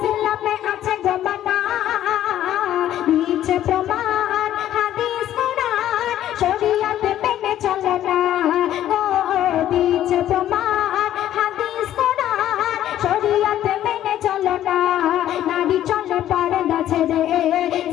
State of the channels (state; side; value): quieter; right; 12.1 dB